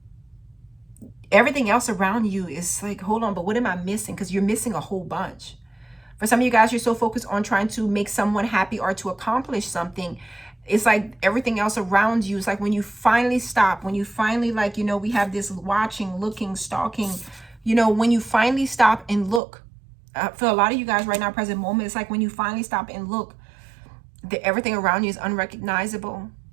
everything else around you is like, hold on, but what am I missing? Because you're missing a whole bunch. For some of you guys, you're so focused on trying to make someone happy or to accomplish something. It's like everything else around you. It's like when you finally stop, when you finally, like, you know, we have this watching, looking, stalking, you know, when you finally stop and look, for a lot of you guys right now, present moment, it's like when you finally stop and look, everything around you is unrecognizable.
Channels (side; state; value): left; drops out; at 19.4 s